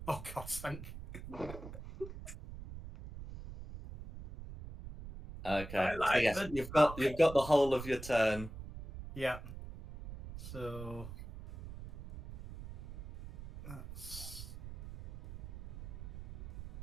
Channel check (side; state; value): right; noise; rumble, 12 dB below the sound